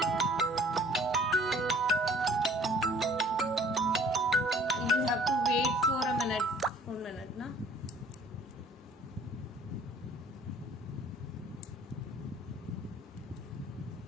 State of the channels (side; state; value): both; normal; correlation 0.54